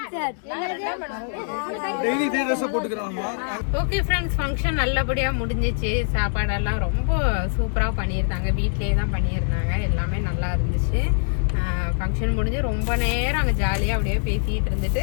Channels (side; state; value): right; silent; digital silence